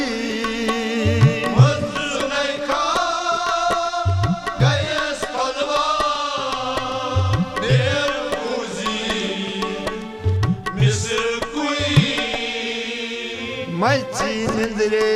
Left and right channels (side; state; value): both; identical; correlation 1.00